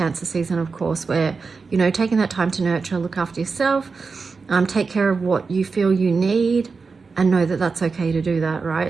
season, of course, where, you know, taking that time to nurture, look after yourself, take care of what you feel you need, and know that that's okay to do that, right?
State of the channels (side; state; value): left; quieter; 4.7 dB